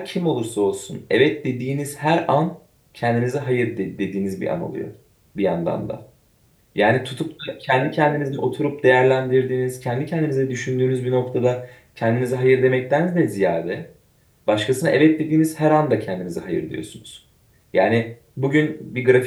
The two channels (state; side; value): identical; both; correlation 1.00